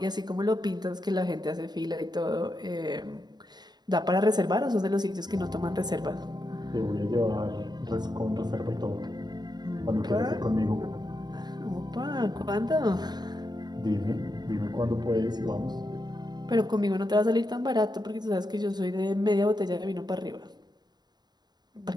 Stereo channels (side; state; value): left; late; 0.20 ms